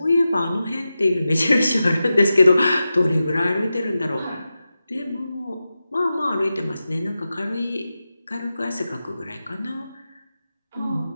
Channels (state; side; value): inverted; both; correlation -0.92